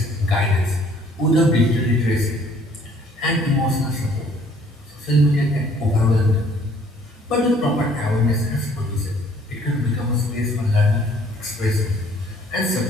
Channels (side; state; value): both; normal; correlation 0.59